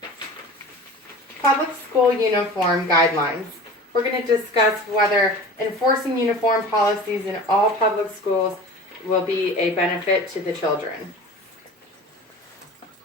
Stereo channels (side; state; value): both; normal; correlation 0.38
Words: Public school uniform guidelines. We're going to discuss whether enforcing uniform policies in all public schools will be a benefit to the children.